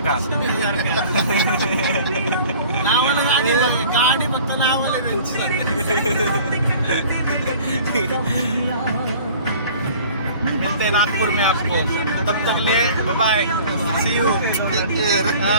गाडी फक्त नावाला मिलते हैं नागपुर में आपको. तब तक ले बाय बाय. C you.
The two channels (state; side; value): inverted; both; correlation -0.47